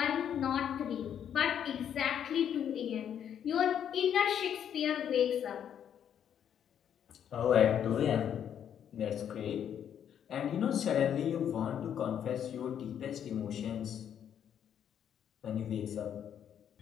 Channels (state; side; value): quieter; right; 9.1 dB